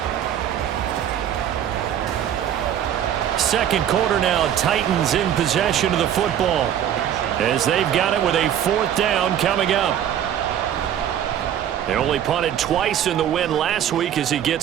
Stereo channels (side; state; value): left; quieter; 10.1 dB